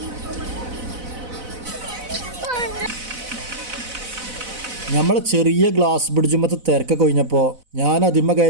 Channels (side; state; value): left; late; 4.0 ms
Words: നമ്മൾ ചെറിയ ഗ്ലാസ് ബ്രിഡ്ജുമത്തെ തിരക്കൊക്കെ കഴിഞ്ഞപ്പോൾ ഞാൻ അതിമ്മ